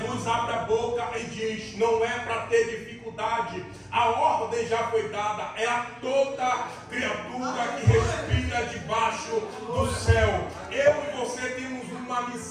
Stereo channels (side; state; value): both; identical; correlation 1.00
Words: abre a boca e diz: não é para ter dificuldade, a ordem já foi dada, é a toda criatura que respira debaixo do céu. Eu e você temos uma